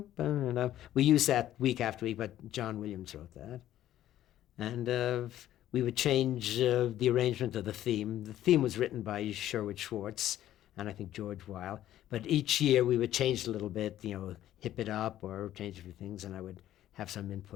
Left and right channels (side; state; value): right; quieter; 12.7 dB